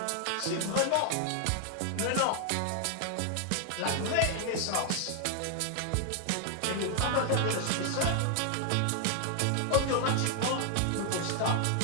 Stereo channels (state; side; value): different; both; correlation 0.00